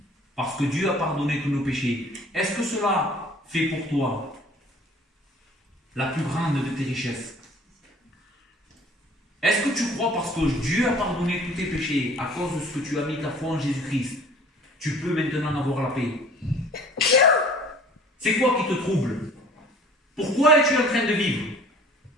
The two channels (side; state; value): both; normal; correlation 0.49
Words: Parce que Dieu a pardonné tous nos péchés. Est-ce que cela fait pour toi la plus grande de tes richesses? Est-ce que tu crois parce que Dieu a pardonné tous tes péchés à cause de ce que tu as mis ta foi en Jésus-Christ, tu peux maintenant avoir la paix? C'est quoi qui te trouble? Pourquoi es-tu en train de vivre?